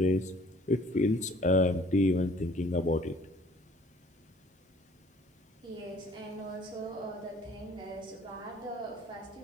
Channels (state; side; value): normal; both; correlation 0.55